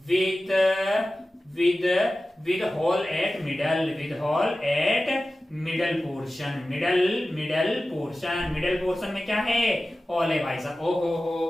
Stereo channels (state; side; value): normal; both; correlation 0.95